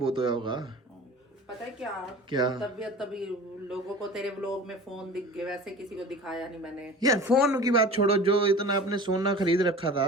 होया होगा। पता है क्या? क्या? तबीयत तभी लोगों को तेरे व्लॉग में फोन दिख गए, वैसे किसी को दिखाया नहीं मैंने। यार फोन की बात छोड़ो, जो इतना आपने सोना खरीद रखा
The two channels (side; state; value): both; normal; correlation 0.39